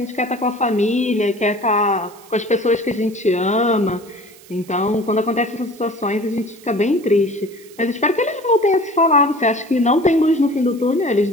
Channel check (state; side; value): noise; right; hiss, 24 dB below the sound